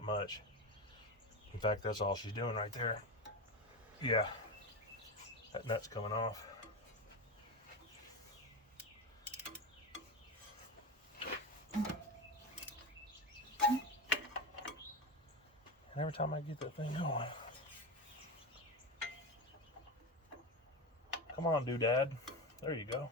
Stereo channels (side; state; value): both; normal; correlation 0.20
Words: much. In fact, that's all she's doing right there. Yeah. That nut's coming off. And every time I get that thing going. Come on, doodad. There you go.